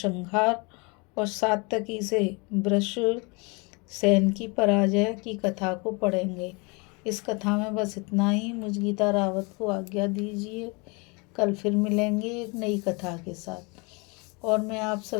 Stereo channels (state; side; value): quieter; right; 29.8 dB